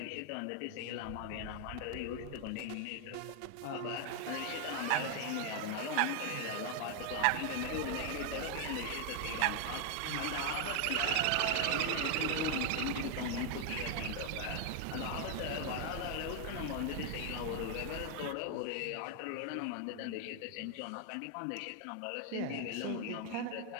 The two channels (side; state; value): both; different; correlation 0.00